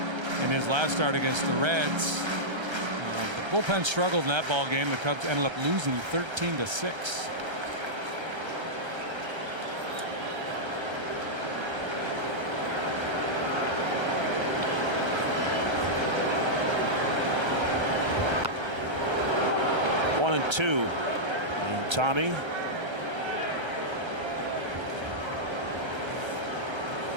in his last start against the Reds. The bullpen struggled in that ball game. The Cubs ended up losing 13-6. One and 2. And Tommy.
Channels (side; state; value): left; late; 1.3 ms